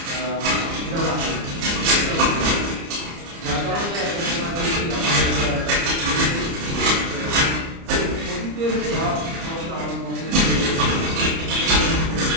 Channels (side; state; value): left; late; 30 ms